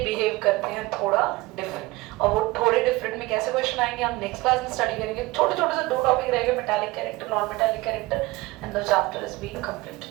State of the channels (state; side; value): quieter; left; 20.9 dB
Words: बिहेव करते हैं थोड़ा डिफरेंट। और वो थोड़े डिफरेंट में कैसे क्वेश्चन आएंगे हम नेक्स्ट क्लास में स्टडी करेंगे। छोटे छोटे से 2 टॉपिक रहेंगे, metallic character, non metallic character, and the chapter is being complete.